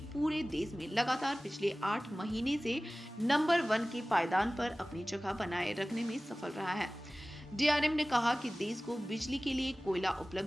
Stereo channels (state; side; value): normal; both; correlation 0.98